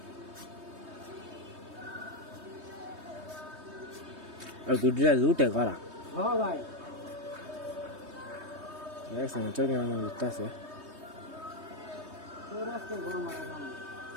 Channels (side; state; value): left; late; 3.2 ms